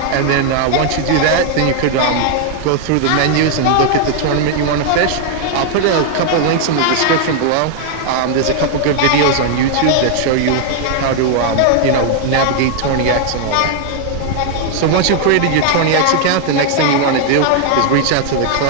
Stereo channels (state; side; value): different; both; correlation 0.00